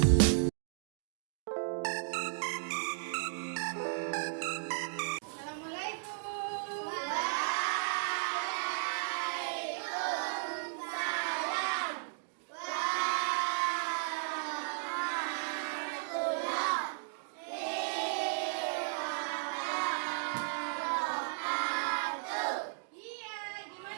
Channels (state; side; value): silent; left; digital silence